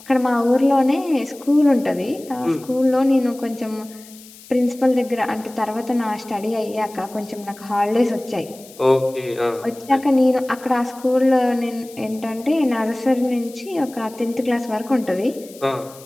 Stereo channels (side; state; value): left; noise; hiss, 21 dB below the sound